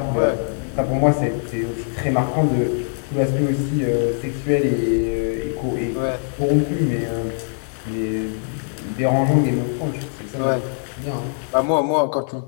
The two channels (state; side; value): silent; right; 64 dB below the other